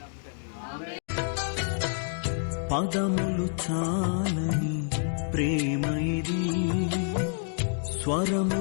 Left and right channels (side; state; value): right; silent; digital silence